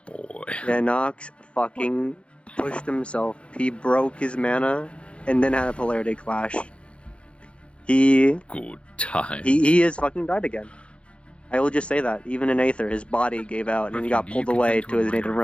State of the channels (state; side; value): late; right; 0.059 ms